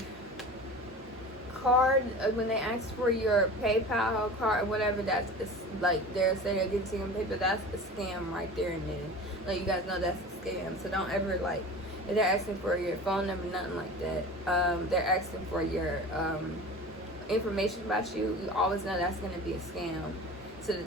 card, when they ask for your PayPal card or whatever, that's like they're saying they're getting to your PayPal, that's a scam right there and then. Like, you guys know that's a scam, so don't ever, like, if they're asking for your phone number, nothing like that. They're asking for your information about you. You always know that's going to be a scam, so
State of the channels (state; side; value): normal; both; correlation 0.36